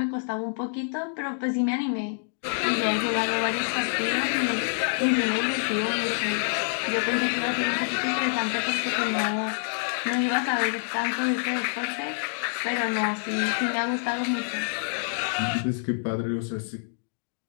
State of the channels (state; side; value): silent; right; digital silence